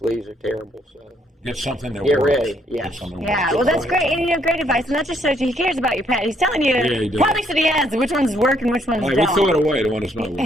are terrible, so. Get something that Get works. ready, yeah. Yeah, well, that's great. And, great advice. And that just shows you he cares about your pet. He's telling you he does. products that he has, which ones work and which ones All right, don't. we throw it away, the one that's not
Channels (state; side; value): normal; both; correlation 0.70